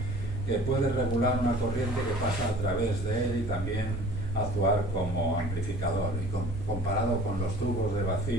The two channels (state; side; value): noise; right; hum, 10 dB below the sound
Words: que puede regular una corriente que pasa a través de él y también actuar como amplificador. Y comparado con los tubos de